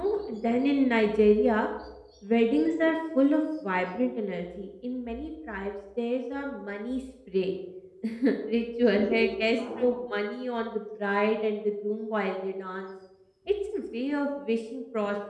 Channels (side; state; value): both; identical; correlation 1.00